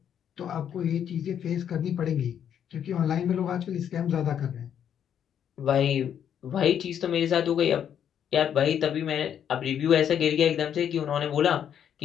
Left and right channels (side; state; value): right; quieter; 9.1 dB